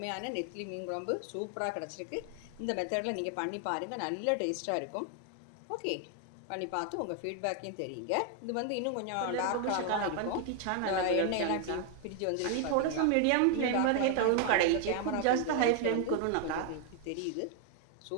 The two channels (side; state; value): both; different; correlation 0.00